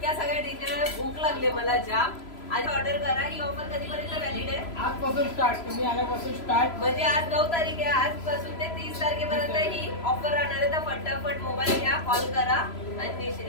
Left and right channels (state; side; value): late; right; 3.0 ms